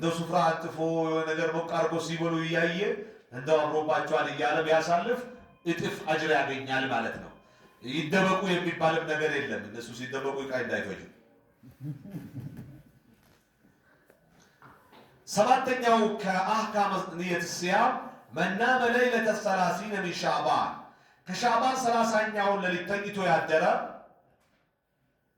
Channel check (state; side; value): identical; both; correlation 1.00